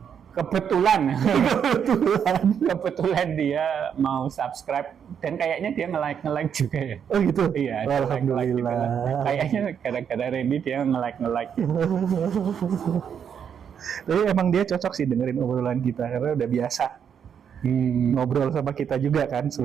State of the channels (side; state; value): left; quieter; 7.9 dB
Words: Kebetulan dia mau subscribe dan kayaknya dia nge-like juga ya. Oh gitu? Iya. Alhamdulillah. Kayaknya gara-gara Randy dia nge-like. Tapi emang dia cocok sih dengerin obrolan kita karena udah biasa ngobrol sama kita juga kan